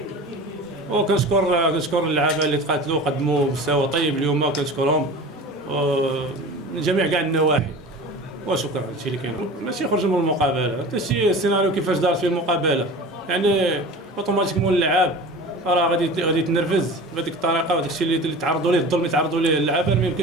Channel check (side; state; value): both; normal; correlation 0.36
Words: وكنشكر اللعابه اللي تقاتلوا قدموا مستوى طيب اليوم، كنشكرهم من جميع كاع النواحي. وشكرا هادشي اللي كاين، ماشي يخرج من المقابله، حتى شي السيناريو كيفاش دارت فيه المقابله، يعني اوتوماتيكمون اللعاب راه غادي يتنرفز بهذيك الطريقه، وهذاك الشيء اللي تعرضوا ليه الظلم اللي تعرضوا ليه اللعابه ما